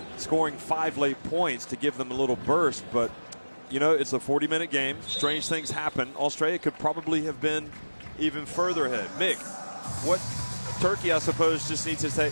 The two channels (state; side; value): inverted; both; correlation -1.00